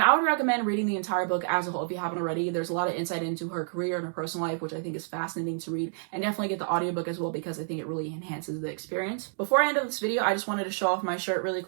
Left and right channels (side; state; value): left; silent; 59 dB below the other